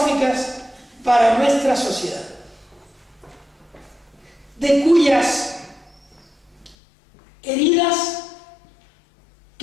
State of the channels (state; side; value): drops out; right; at 6.8 s